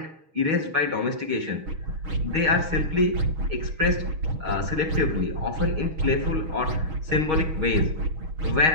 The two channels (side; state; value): left; late; 6.3 ms